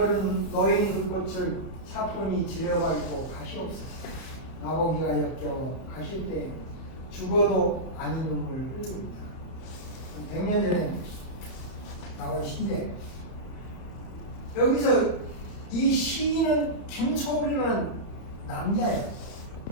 노인 그 꽃을 차분히 들여밟고 가시옵소서. 나보기가 역겨워 가실 때 죽어도 아닌 눈물 흘립니다. 100년 전에 나온 시인데 여기서 이 시인은 김소월이라는 남자예요.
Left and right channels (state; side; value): late; right; 32 ms